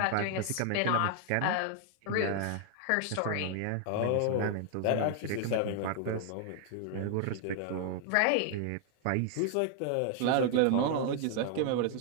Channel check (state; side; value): different; both; correlation 0.00